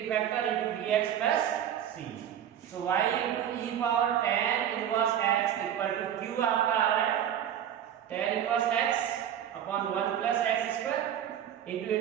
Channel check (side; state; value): left; quieter; 10.0 dB